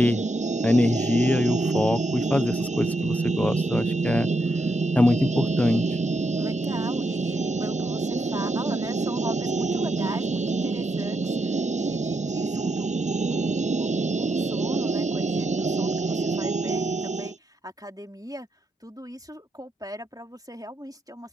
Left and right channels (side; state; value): both; normal; correlation 0.81